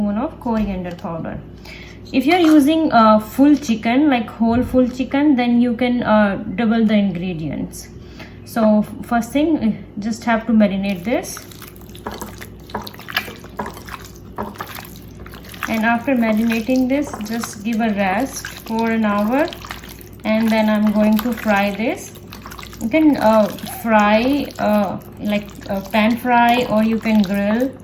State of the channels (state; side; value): identical; both; correlation 1.00